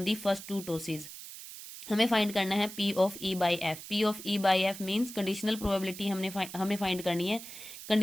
the first 2 tosses. हमें फाइंड करना है P of E by F. P of E by F means conditional probability हमें फाइंड करनी है।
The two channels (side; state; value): right; noise; hiss, 12 dB below the sound